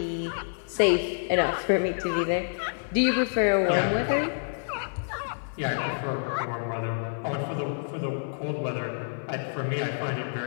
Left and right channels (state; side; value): silent; right; 59 dB below the other